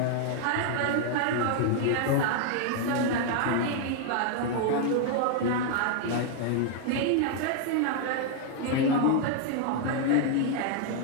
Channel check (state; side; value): different; both; correlation 0.00